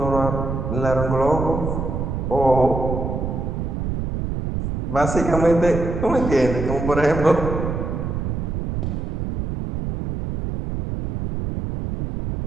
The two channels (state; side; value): noise; right; rumble, 3 dB below the sound